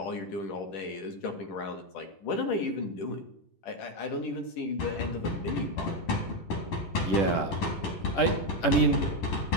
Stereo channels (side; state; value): right; late; 10 ms